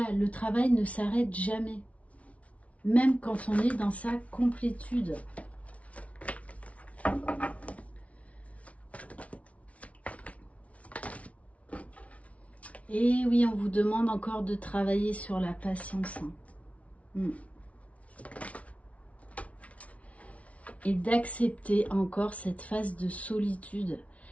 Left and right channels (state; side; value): late; right; 0.065 ms